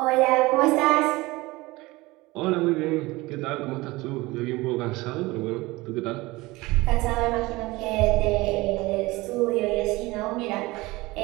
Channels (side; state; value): left; quieter; 21.1 dB